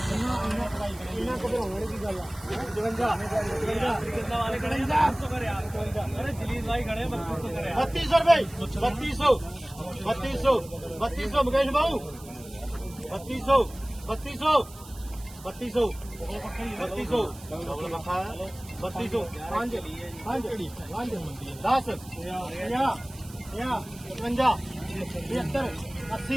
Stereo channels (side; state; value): right; noise; hiss, 19 dB below the sound